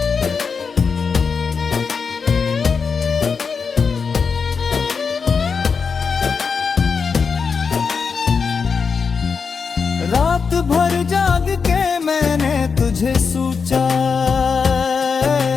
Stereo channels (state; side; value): quieter; right; 5.5 dB